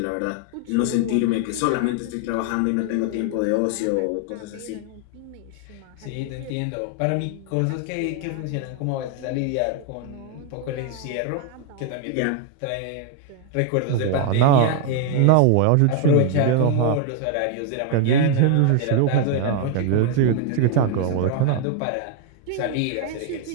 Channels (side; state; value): both; different; correlation 0.00